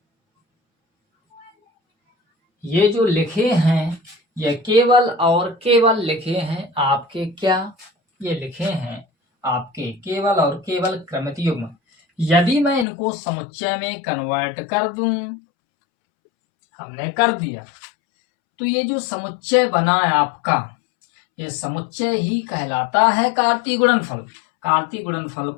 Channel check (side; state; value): right; drops out; at 12.9 s